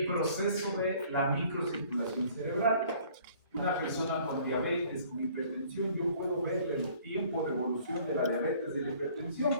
proceso de la microcirculación cerebral. Una persona con diabetes, con hipertensión, yo puedo ver el tiempo de evolución de la diabetes y de la hipertensión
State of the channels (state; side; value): inverted; both; correlation -0.56